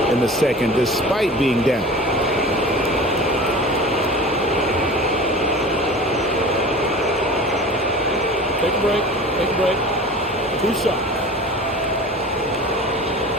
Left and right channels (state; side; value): normal; both; correlation 0.37